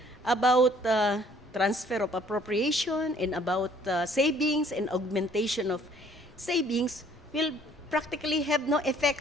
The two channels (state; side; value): normal; both; correlation 0.59